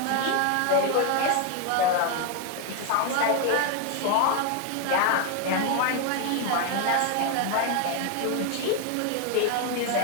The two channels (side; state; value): both; different; correlation 0.01